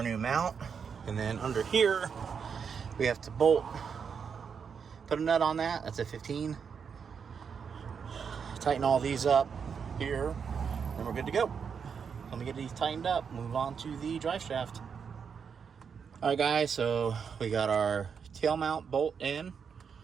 new mount. And then under here, we have to bolt, put a nut on that. That's a 15. Tighten all these up here, and we're good to go. Let me get these tightened up, move on to the drive shaft. All right, guys, so we got our tail mount bolt in.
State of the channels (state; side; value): quieter; left; 6.5 dB